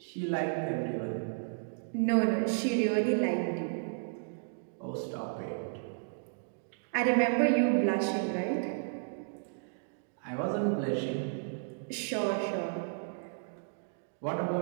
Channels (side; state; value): left; silent; digital silence